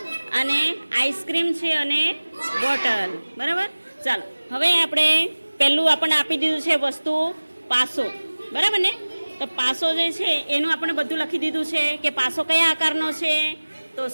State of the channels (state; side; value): inverted; both; correlation -1.00